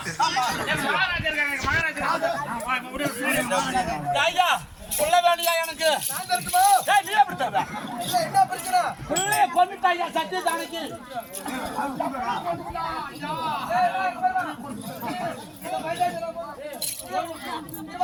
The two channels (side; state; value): both; identical; correlation 1.00